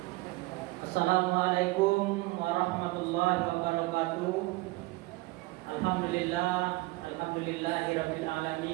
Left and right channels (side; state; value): left; quieter; 21.5 dB